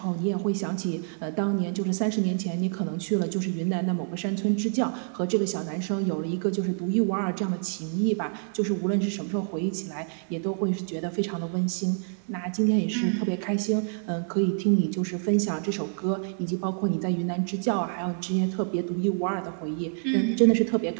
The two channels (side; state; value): left; silent; digital silence